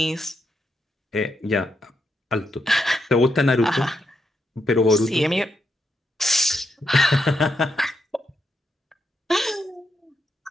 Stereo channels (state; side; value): normal; both; correlation 0.81